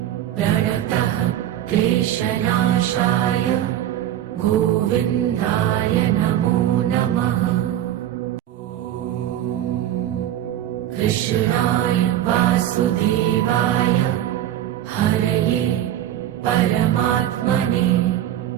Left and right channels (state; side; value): quieter; left; 12.0 dB